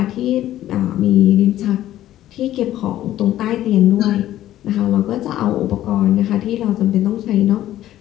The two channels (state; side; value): quieter; right; 13.3 dB